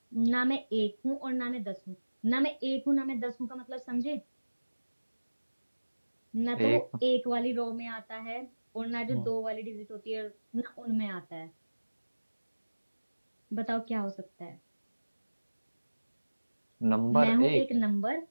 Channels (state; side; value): inverted; both; correlation -1.00